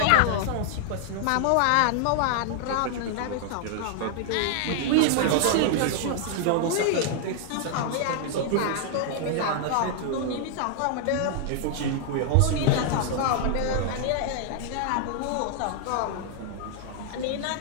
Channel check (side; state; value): both; different; correlation 0.00